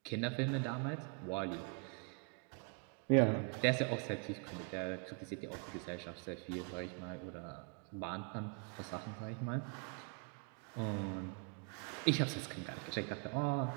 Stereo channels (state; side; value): quieter; left; 37.1 dB